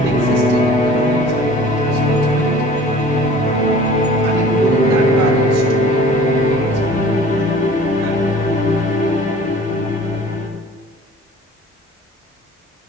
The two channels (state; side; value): normal; both; correlation 0.47